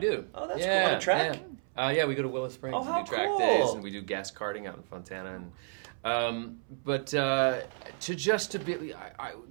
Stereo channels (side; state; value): left; silent; 57 dB below the other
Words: Oh, that's yeah, cool. On a track? Yeah, we go to Willow Springs Oh, and how do track cool. days, and we do gas karting out in Fontana. And to be,